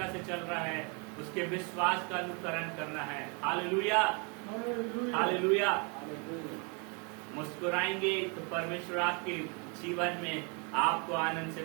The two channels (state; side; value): quieter; left; 34.0 dB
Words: से चल रहा है, उसके विश्वास का अनुकरण करना है। Hallelujah, hallelujah. मुस्कुराएंगे तो परमेश्वर आपके जीवन में आपको आनंद